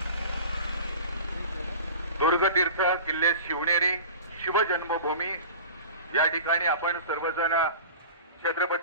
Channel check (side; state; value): both; inverted; correlation -0.37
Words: दुर्गतीर्थ किल्ले शिवनेरी शिवजन्मभूमी या ठिकाणी आपण सर्वजण